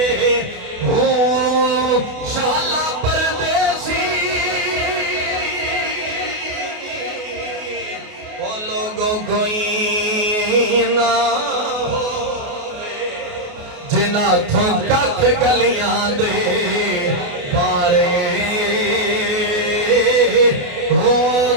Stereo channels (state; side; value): late; left; 28 ms